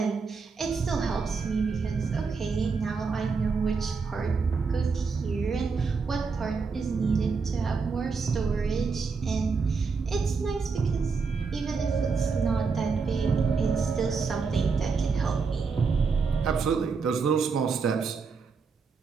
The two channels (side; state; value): left; quieter; 5.0 dB